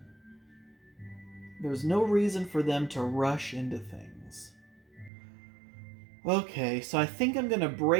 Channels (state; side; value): drops out; left; at 5.1 s